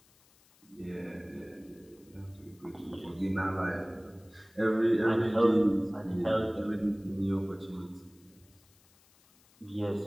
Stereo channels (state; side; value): noise; left; hiss, 30 dB below the sound